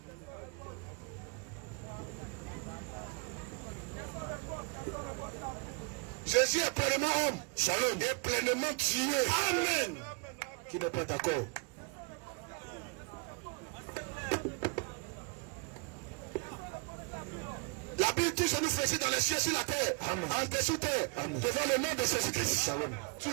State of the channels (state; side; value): quieter; left; 31.4 dB